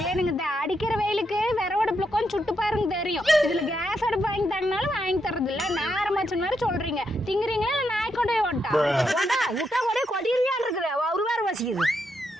ஏனுங்க இந்த அடிக்கிற வெயிலுக்கு விறவடுப்புல கொஞ்சம் சுட்டு பாருங்க தெரியும். இதுல கேஸ் அடுப்பு வாங்கி தரனாலும் வாங்கி தரது இல்ல. நேரமாச்சு மாதிரி சொல்றீங்க. திங்குறீங்களா இல்ல நாய் கொண்டே ஓட்டா? விட்டா கூட கொடியிருக்கான் இருக்குது. ஒரு வேற பசிக்குது.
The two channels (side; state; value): both; normal; correlation 0.81